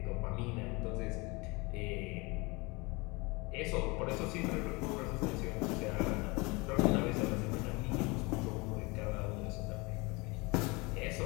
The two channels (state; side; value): quieter; right; 26.1 dB